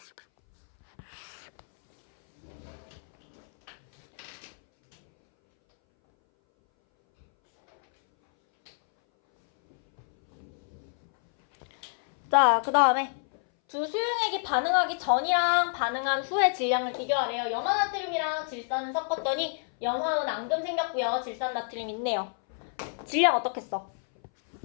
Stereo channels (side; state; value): right; silent; 59 dB below the other